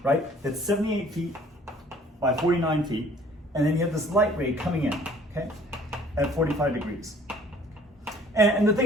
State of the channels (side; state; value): both; normal; correlation 0.55